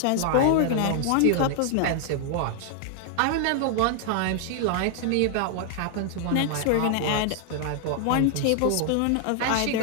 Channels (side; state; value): both; different; correlation 0.00